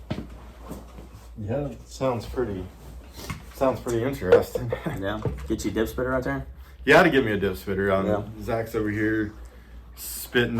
Yeah, sounds pretty interesting. Yeah, get you a dip spitter right there. You had to give me a dip spitter. Yeah. Zach's over here spitting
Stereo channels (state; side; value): identical; both; correlation 1.00